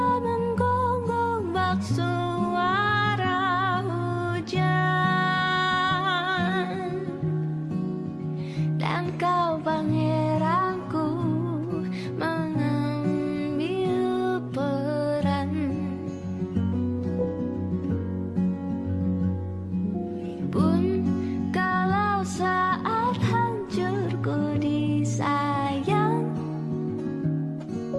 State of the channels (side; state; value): both; identical; correlation 1.00